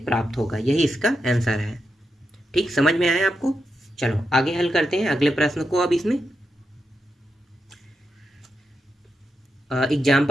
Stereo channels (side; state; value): both; normal; correlation 0.86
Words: प्राप्त होगा। यही इसका आंसर है। ठीक, समझ में आया आपको। चलो आगे हल करते हैं अगले प्रश्न को। अब इसमें